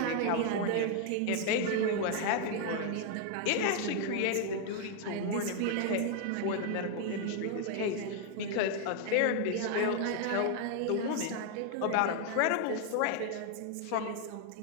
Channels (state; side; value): different; both; correlation 0.00